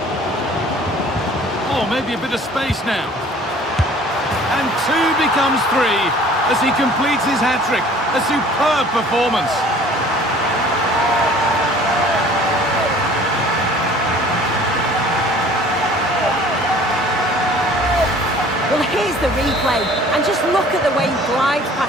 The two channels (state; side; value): normal; both; correlation 0.50